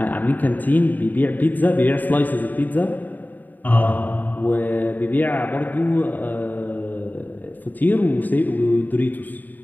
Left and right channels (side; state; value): right; late; 0.087 ms